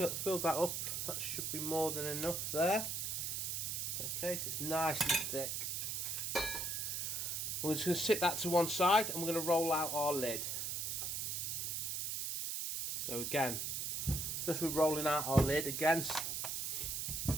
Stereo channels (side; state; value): right; noise; hiss, 2 dB below the sound